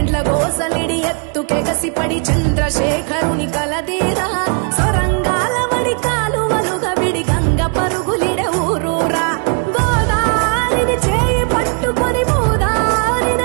గోసలిడి ఎత్తుకెగసిపడి చంద్రశేఖరుని కలదీరా సొరంగాల వడి కాలువలుగా విడి గంగ పరు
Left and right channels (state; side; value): quieter; left; 38.7 dB